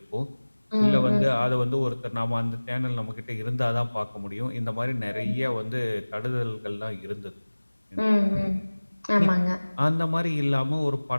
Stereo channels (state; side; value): inverted; both; correlation -1.00